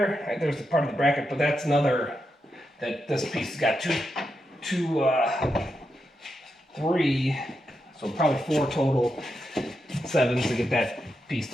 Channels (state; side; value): normal; both; correlation 0.85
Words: there's the part of the bracket, but that's another, that this piece has got three, so probably 4 total 7s to get that piece